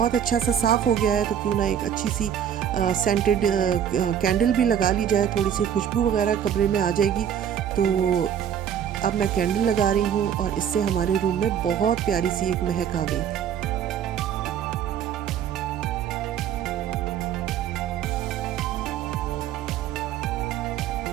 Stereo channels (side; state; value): left; quieter; 9.1 dB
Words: अच्छा सा साफ़ हो गया है तो क्यों ना एक अच्छी सी सेंटेड कैंडल भी लगा ली जाए, थोड़ी सी खुशबू वगैरह कमरे में आ जाएगी। तो अब मैं कैंडल लगा रही हूँ और इससे हमारे रूम में बहुत प्यारी सी एक महक आ गई थी।